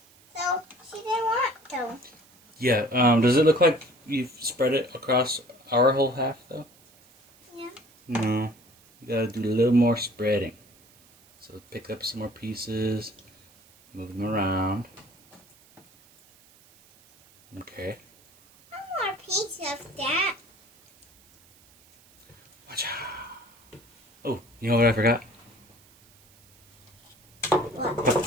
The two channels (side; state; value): right; noise; hiss, 28 dB below the sound